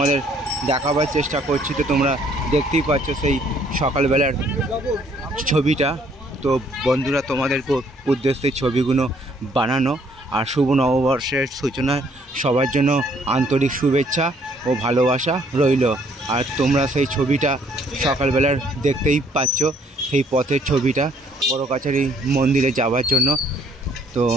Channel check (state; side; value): normal; both; correlation 0.64